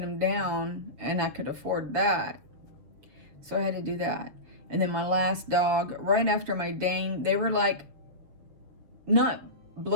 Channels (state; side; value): late; left; 7.2 ms